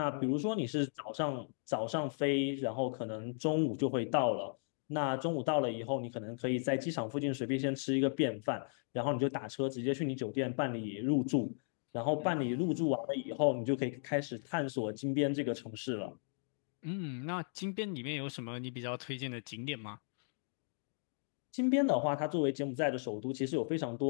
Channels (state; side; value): silent; right; digital silence